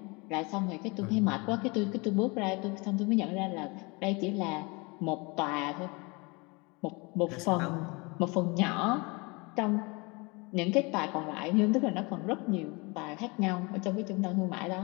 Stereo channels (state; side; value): quieter; right; 27.8 dB